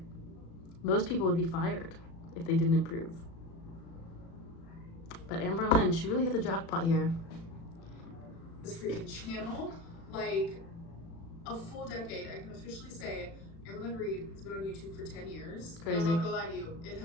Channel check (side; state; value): right; late; 36 ms